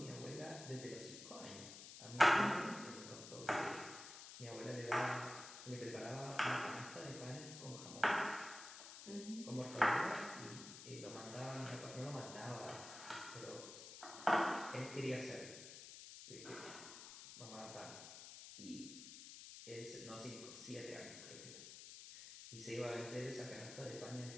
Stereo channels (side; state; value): left; noise; hiss, 12 dB below the sound